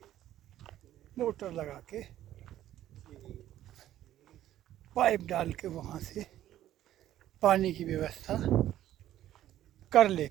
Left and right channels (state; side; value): quieter; left; 12.8 dB